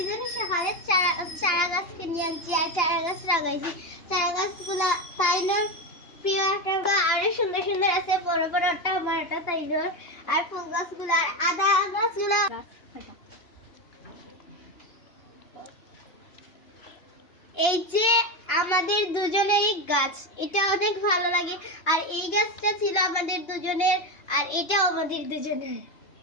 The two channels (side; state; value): right; late; 2.8 ms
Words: সকালে চারা গাছ কিনে আনছি আর চারা গাছ লাগাইছি। চারা গাছগুলা তাইনোর প্রিয় একটা, আরো সুন্দর সুন্দর আছে, বড় বড় একটা আমার একটা তাইনোর। আর ফুল গাছগুলা আর আদা গাছগুলা এই যে আমাদের দুজনেরই গাছ, এটা অনেক ভালো লাগে। আর এই গাছটা ছিল আমাদের দুজনের, আর এটাও আমাদের দুজনের।